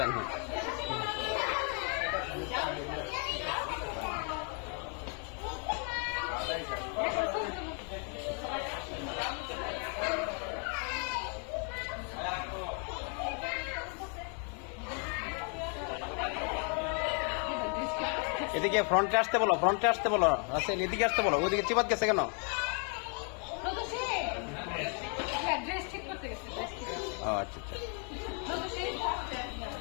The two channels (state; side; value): quieter; right; 39.6 dB